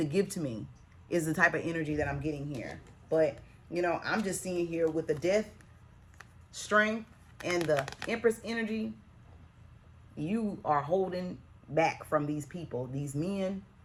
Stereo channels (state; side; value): identical; both; correlation 1.00